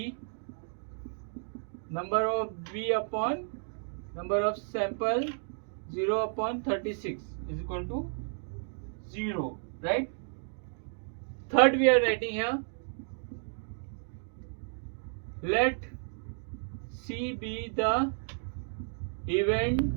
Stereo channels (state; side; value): silent; left; 56 dB below the other